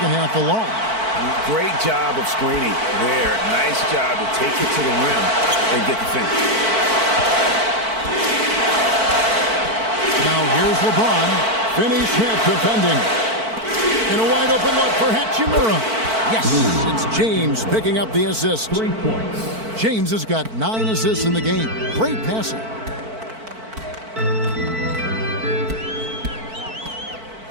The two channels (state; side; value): late; left; 4.5 ms